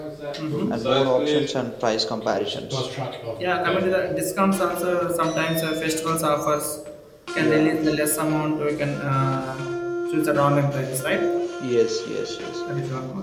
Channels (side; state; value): both; identical; correlation 1.00